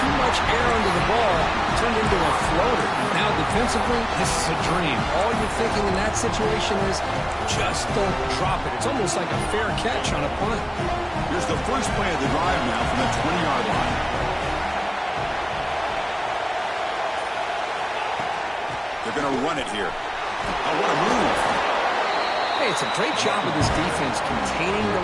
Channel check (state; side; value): identical; both; correlation 1.00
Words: much air under the ball, turned into a floater. Now defensively, this is a dream. All you're thinking in that situation is just don't drop it. It's almost like a fair catch on a punt. Here's the first play of the drive now from the 20-yard line. They're going to run it here. Oh, what a move. Hey, It's a great job of this defense containing the